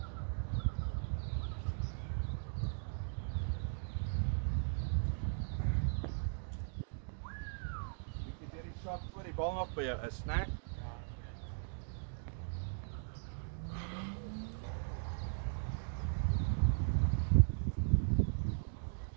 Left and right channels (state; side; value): silent; left; digital silence